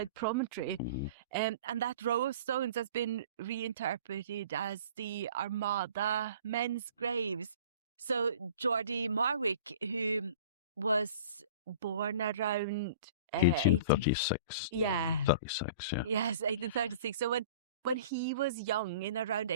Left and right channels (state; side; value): inverted; both; correlation -0.44